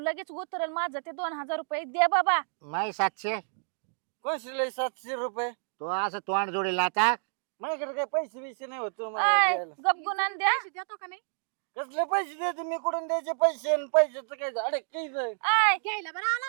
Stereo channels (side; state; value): left; silent; digital silence